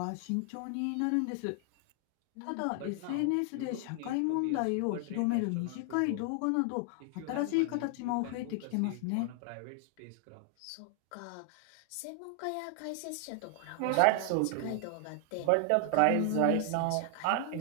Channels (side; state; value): both; different; correlation 0.00